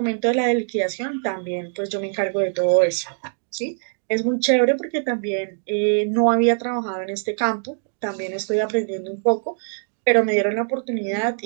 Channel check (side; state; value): left; silent; digital silence